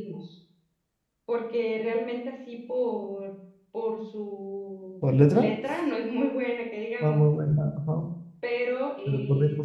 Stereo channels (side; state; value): both; identical; correlation 1.00